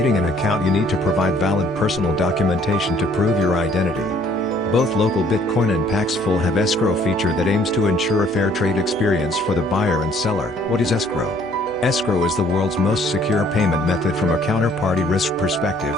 an account you need to provide valid personal documentation to prove your identity. Both Local Bitcoin and Paxful have escrow feature that aims to ensure a fair trade experience for the buyer and seller. What is escrow? Escrow is the world's most secure payment method from a counterparty risk perspective,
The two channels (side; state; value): right; noise; hum, 26 dB below the sound